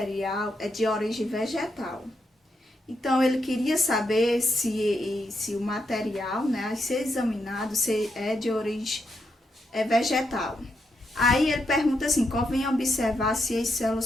é de origem vegetal. Então, ele queria saber se o material, né, a ser examinado, se é de origem vegetal. Aí ele pergunta assim: convém observar se as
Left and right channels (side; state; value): both; normal; correlation 0.81